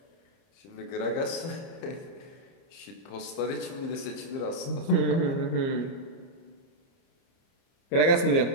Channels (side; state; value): right; late; 30 ms